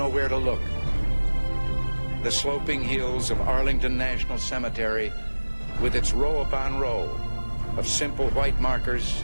where to look. The sloping hills of Arlington National Cemetery, with its row upon row of simple white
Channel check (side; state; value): both; inverted; correlation -1.00